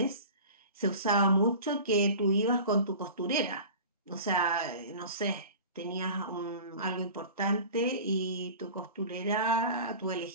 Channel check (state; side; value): inverted; both; correlation -0.38